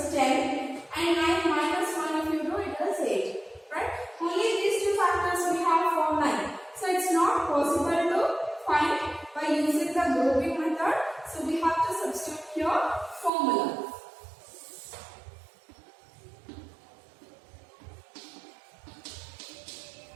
10 and 9 minus 1 if you do it is 8. Right? Only these two factors we have for 9. So it's not possible to find by using the grouping method. So we have to substitute here formula.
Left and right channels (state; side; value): drops out; left; at 13.3 s